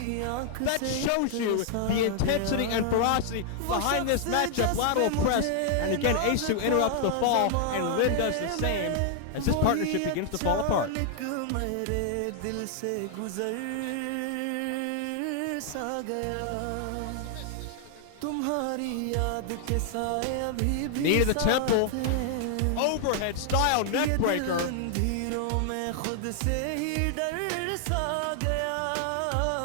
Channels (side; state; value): both; different; correlation 0.00